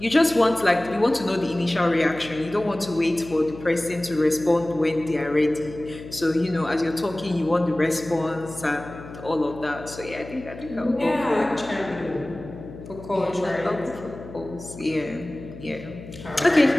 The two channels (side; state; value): left; noise; hum, 15 dB below the sound